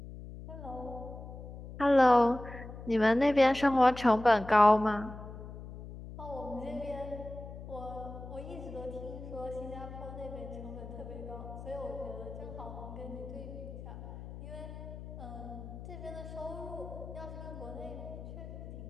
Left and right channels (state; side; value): noise; left; hum, 12 dB below the sound